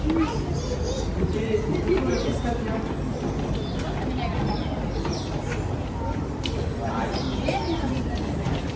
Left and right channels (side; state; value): both; identical; correlation 1.00